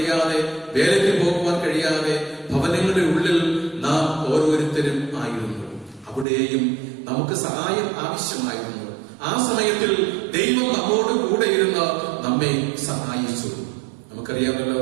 വേലയ്ക്ക് പോകുവാൻ കഴിയാതെ ഭവനങ്ങളുടെ ഉള്ളിൽ നാം ഓരോരുത്തരും ആയിരുന്നു. അവിടെയും നമുക്ക് സഹായം ആവശ്യമായിരുന്നു. ആ സമയത്തിൽ ദൈവം നമ്മോട് കൂടെ ഇരുന്ന് നമ്മെ സഹായിച്ചു.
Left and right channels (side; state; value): left; drops out; at 6.2 s